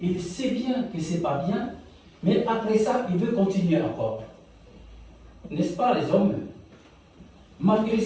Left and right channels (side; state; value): both; identical; correlation 1.00